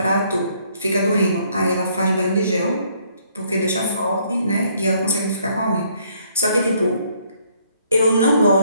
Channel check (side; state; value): both; inverted; correlation -0.66